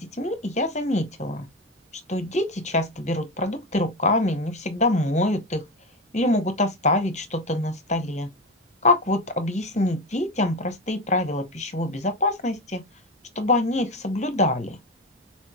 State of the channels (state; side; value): normal; both; correlation 0.20